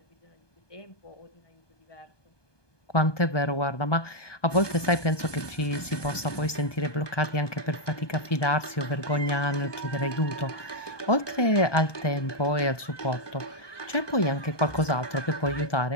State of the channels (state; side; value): late; right; 1.2 ms